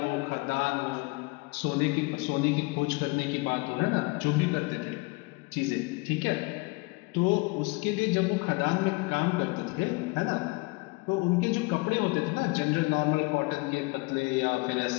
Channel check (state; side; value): quieter; right; 26.1 dB